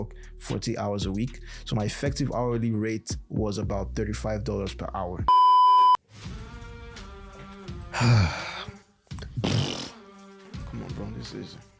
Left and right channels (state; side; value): identical; both; correlation 1.00